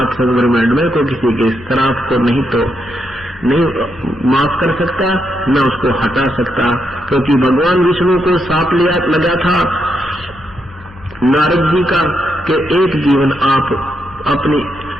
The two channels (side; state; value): both; normal; correlation 0.81